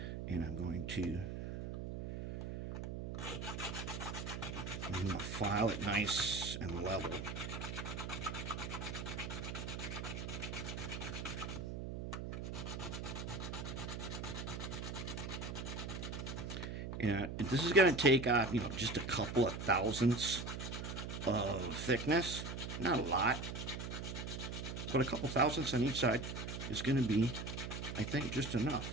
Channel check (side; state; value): right; noise; hum, 6 dB below the sound